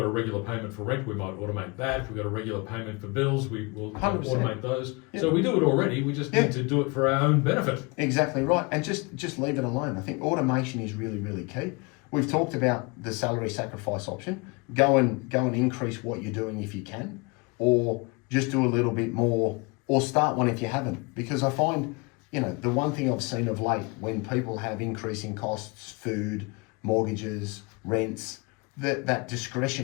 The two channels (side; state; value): right; quieter; 28.4 dB